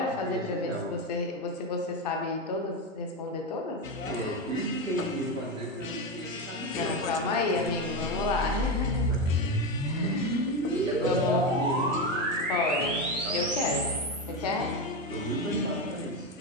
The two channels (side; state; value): both; normal; correlation 0.14